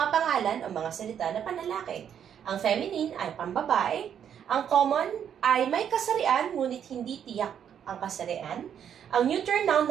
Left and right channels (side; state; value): left; quieter; 8.8 dB